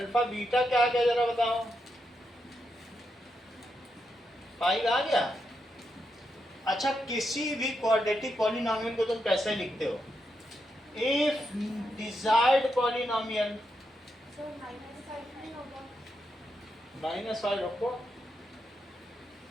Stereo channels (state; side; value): normal; both; correlation 0.83